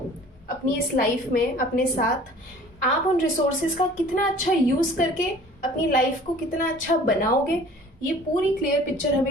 अपनी इस लाइफ में अपने साथ, आप उन रिसोर्सेज का कितना अच्छा यूज़ करके अपनी लाइफ को कितना अच्छा बनाओगे, ये पूरी क्लियर पिक्चर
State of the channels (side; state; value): both; normal; correlation 0.48